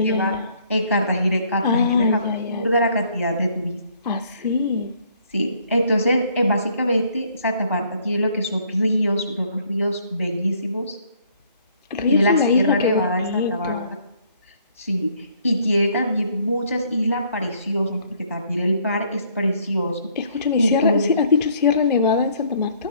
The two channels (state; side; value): inverted; both; correlation -0.63